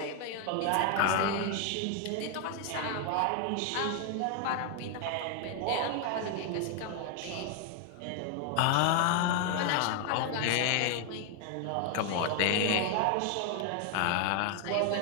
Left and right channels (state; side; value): different; both; correlation 0.00